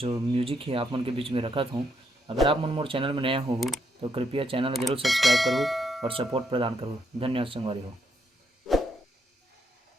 म्यूजिक है आप मन के बीच में रखत हूँ। अगर आप मन मोर चैनल में नया हो तो कृपया चैनल जरूर सब्सक्राइब करो और सपोर्ट प्रदान करो। धन्यवाद संगवारी हो।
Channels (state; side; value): normal; both; correlation 0.76